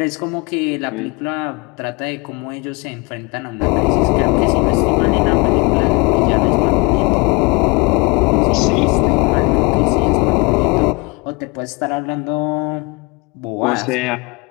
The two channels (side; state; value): right; quieter; 28.2 dB